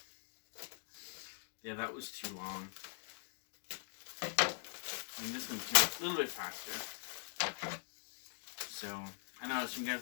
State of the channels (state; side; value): silent; right; digital silence